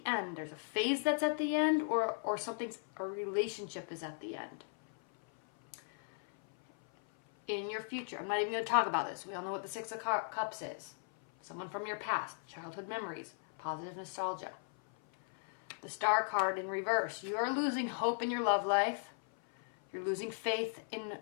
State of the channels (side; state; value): right; silent; 53 dB below the other